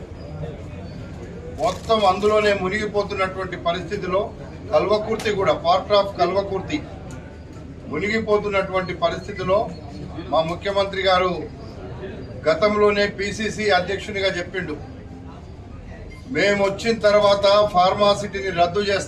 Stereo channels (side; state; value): both; identical; correlation 1.00